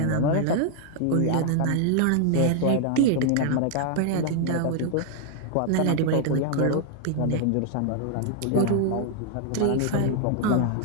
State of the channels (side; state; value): both; different; correlation 0.00